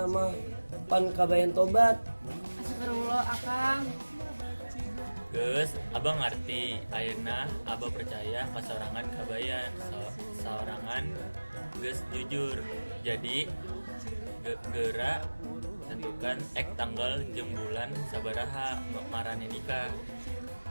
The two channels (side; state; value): both; inverted; correlation -1.00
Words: mah pan Kabayan tobat. Astagfirullah Akang. Geus, Abah ngarti. Ayeuna Abah percaya kasorangan Kabayan, saorangan geus jujur. Jadi geura tentukan tanggal jeung bulan sabaraha marane nikah.